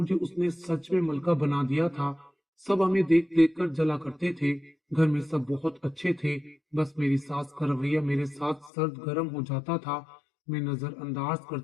उसने सच में मलका बना दिया था। सब हमें देख देख कर जला करते थे। घर में सब बहुत अच्छे थे, बस मेरी सास का रवैया मेरे साथ सर्द गर्म हो जाता था। मैं नजरअंदाज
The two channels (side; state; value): right; drops out; at 8.7 s